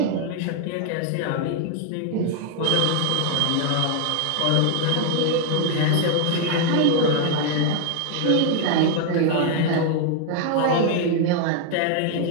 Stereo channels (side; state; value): both; different; correlation 0.00